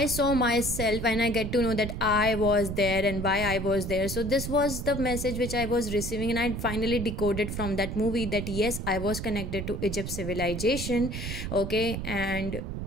saw myself, and I get to know that I was there and why I was there. So this was the message which I was receiving, and I finally decoded from that movie that yes, I was connected to Egypt civilization. Okay, and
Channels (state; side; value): noise; right; rumble, 5 dB below the sound